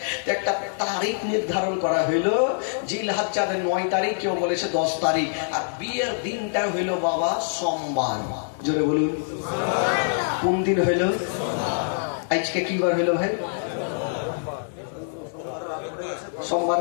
একটা তারিখ নির্ধারণ করা হইলো, জিলহজ্জার 9 তারিখ, কেউ বলেছে 10 তারিখ, আর বিয়ের দিনটা হইলো বাবা সোমবার। জোরে বলুন। কোন দিন হইল? আজকে কি বার হইলো ভাই? সোমবার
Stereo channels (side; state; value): right; silent; digital silence